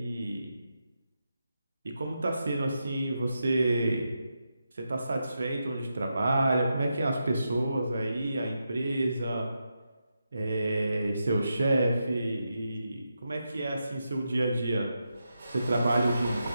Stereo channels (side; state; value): both; inverted; correlation -0.86